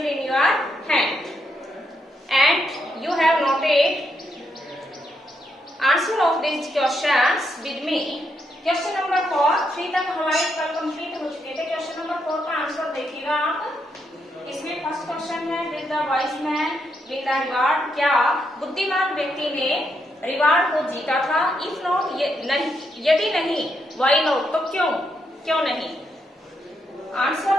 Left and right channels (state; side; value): normal; both; correlation 0.79